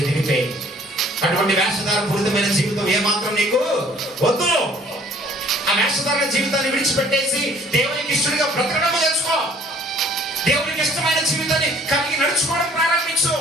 ఎదిగితే, అటువంటి వేషధారణ పూరితమైన జీవితం ఏమాత్రం నీకు వద్దు. ఆ వేషధారణ జీవితాన్ని విడిచిపెట్టేసి దేవునికి ఇష్టడిగా బ్రతకడం నేర్చుకో. దేవునికి ఇష్టమైన జీవితాన్ని కలిగి నడుచుకోవడం ప్రారంభించు.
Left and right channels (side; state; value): both; normal; correlation 0.56